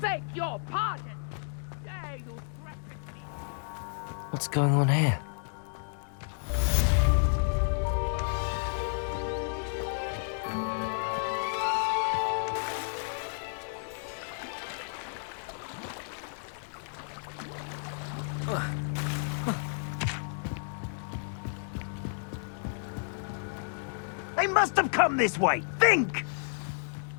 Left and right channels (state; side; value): silent; right; digital silence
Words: beg your pardon. How dare you threaten me? What's going on here? They must have come this way. Think!